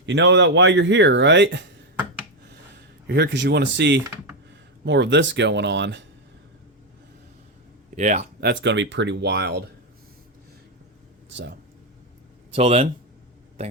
you know that why you're here, right? You're here because you want to see more of this going on. Yeah, that's going to be pretty wild. So, till then,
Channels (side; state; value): both; normal; correlation 0.06